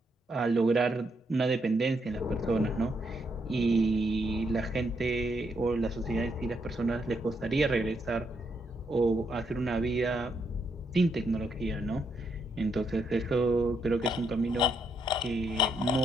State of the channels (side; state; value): both; normal; correlation 0.77